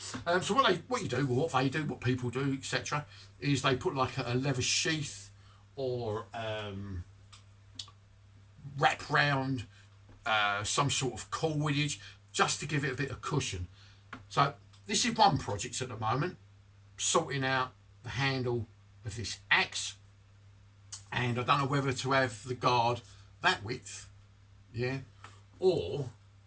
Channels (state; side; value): identical; both; correlation 1.00